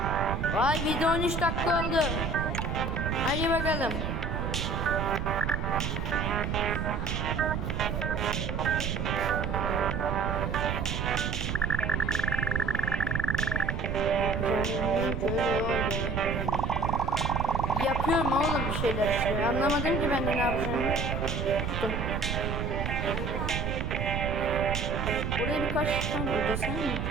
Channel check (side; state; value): right; noise; rumble, 1 dB below the sound